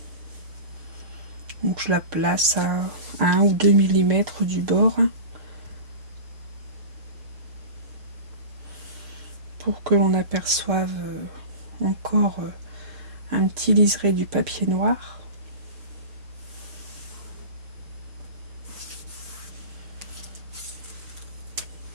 Donc je la place à 1 ou 2 mm du bord pour que l'on aperçoive encore un petit liseré du papier noir.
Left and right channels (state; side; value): late; left; 6.8 ms